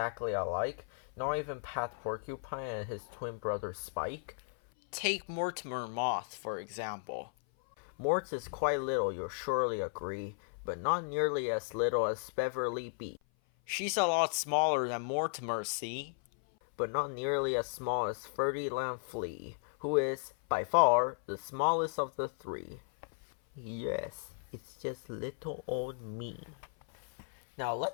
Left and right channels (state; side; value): silent; right; 54 dB below the other